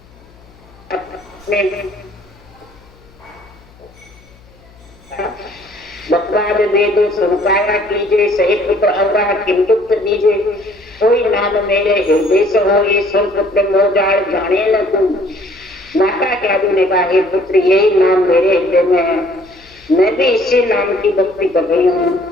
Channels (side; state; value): left; noise; hum, 27 dB below the sound